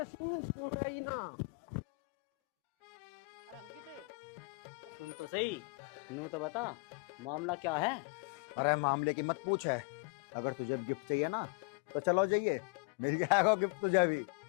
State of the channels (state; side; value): quieter; right; 30.8 dB